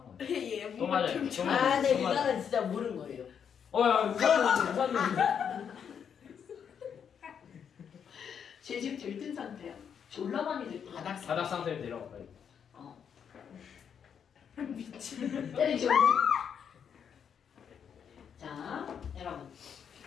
거야. 얘 또 맞아요. 또 맞아요. 아, 네, 또 맞아요. 이거는 진짜 모르는 거예요. 야, 우산은 제 집 들뜬 상태야. 졸라 많이 들뜬. 바닥 상태로 내려가 빨리. 미친. 때리죠. 자, 여러분.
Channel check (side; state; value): right; quieter; 7.6 dB